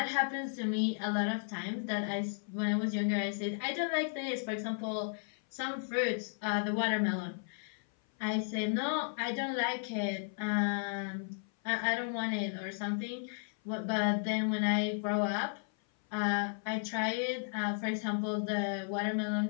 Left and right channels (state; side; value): silent; right; 55 dB below the other